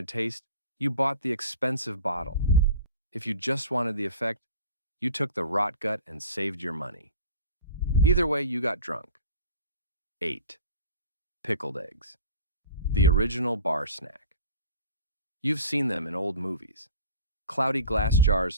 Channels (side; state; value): both; inverted; correlation -0.41